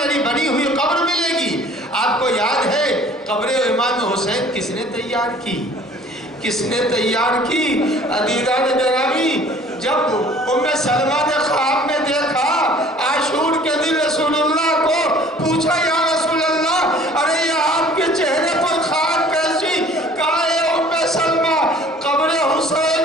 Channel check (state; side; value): normal; both; correlation 0.52